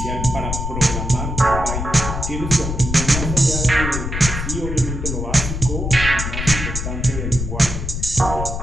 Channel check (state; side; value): noise; left; rumble, 4 dB below the sound